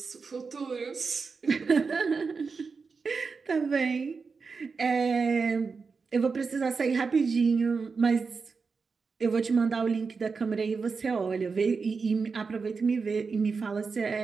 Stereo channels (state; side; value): quieter; left; 4.9 dB